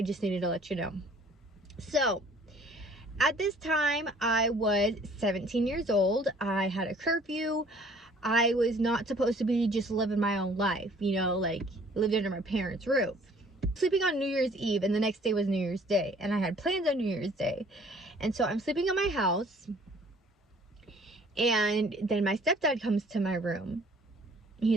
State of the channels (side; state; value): both; normal; correlation 0.55